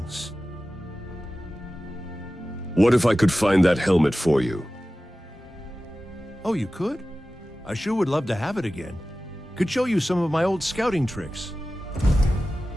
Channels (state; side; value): normal; both; correlation 0.95